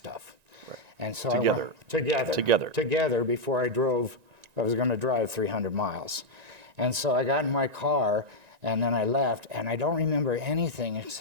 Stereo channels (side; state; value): left; late; 1.9 ms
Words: Right. And so together before I was going to drive 300 miles. And so I got in my car and then I left, and I don't remember anything